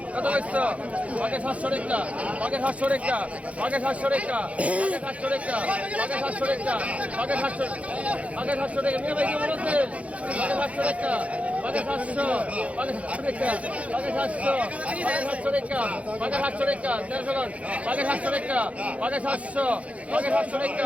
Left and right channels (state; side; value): late; left; 0.065 ms